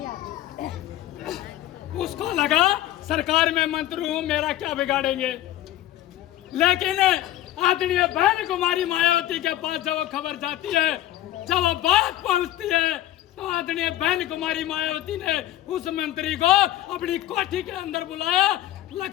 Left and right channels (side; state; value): right; quieter; 13.9 dB